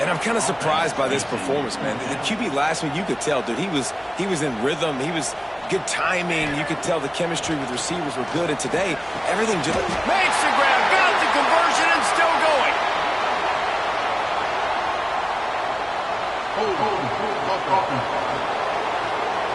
And I'm kind of surprised by this performance, man. The QB last week, you could tell, dude, he was in rhythm. He was good timing. You could tell the chemistry with receivers were good. And today, everything just... Makes the grab, got the conversion, and still going.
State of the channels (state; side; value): identical; both; correlation 1.00